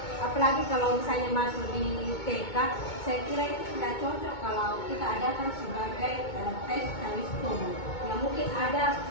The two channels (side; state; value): right; late; 2.2 ms